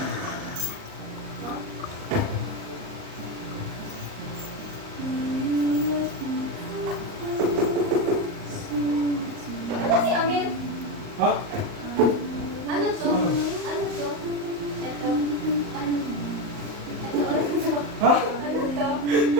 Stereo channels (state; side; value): late; left; 38 ms